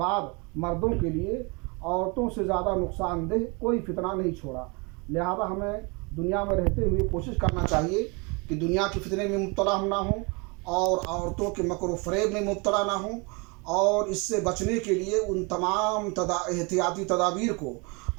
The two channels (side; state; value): left; quieter; 30.0 dB